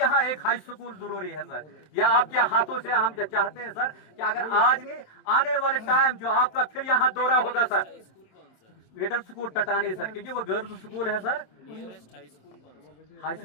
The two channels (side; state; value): right; late; 27 ms